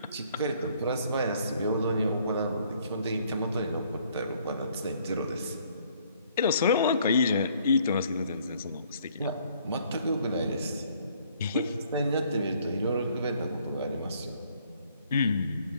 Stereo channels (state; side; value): inverted; both; correlation -0.63